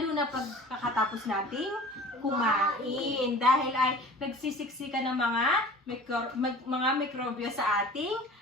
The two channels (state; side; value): normal; both; correlation 0.42